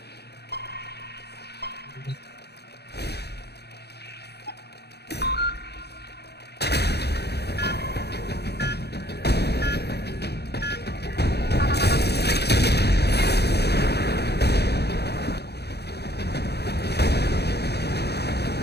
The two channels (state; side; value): late; right; 0.48 ms